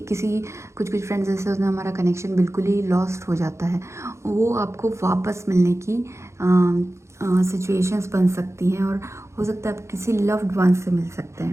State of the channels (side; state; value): left; late; 0.14 ms